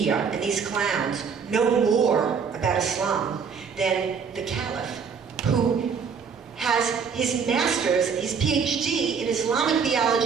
and these clowns know more about Islam than the Caliph, who has his master's, his PhD in Islamic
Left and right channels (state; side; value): quieter; left; 6.1 dB